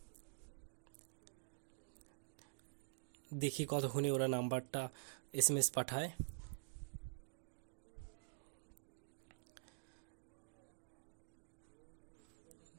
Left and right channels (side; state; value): left; silent; digital silence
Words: দেখি কতক্ষণে ওরা নাম্বারটা এসএমএস পাঠায়।